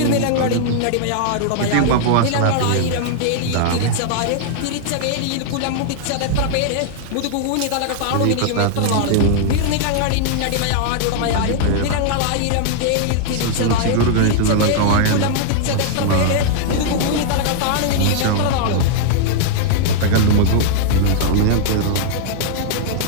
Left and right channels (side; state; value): both; different; correlation -0.01